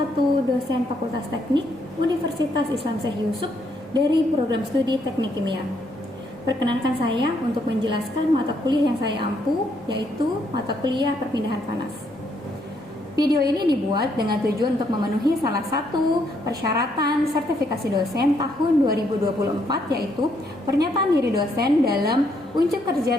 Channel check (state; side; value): normal; both; correlation 0.73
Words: dosen Fakultas Teknik Universitas Islam Syekh Yusuf dari program studi Teknik Kimia. Perkenankan saya untuk menjelaskan mata kuliah yang saya ampu, yaitu mata kuliah perpindahan panas. Video ini dibuat dengan tujuan untuk memenuhi salah satu persyaratan sertifikasi dosen tahun 2024, yaitu pernyataan diri dosen dalam Unjuk Kerja